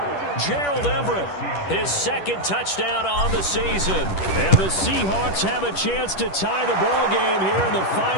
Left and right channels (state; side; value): late; right; 10 ms